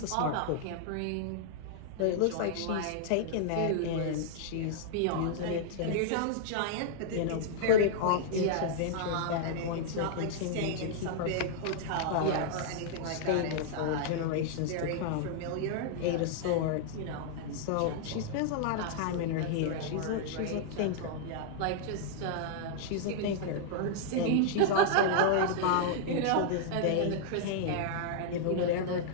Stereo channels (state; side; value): different; both; correlation -0.01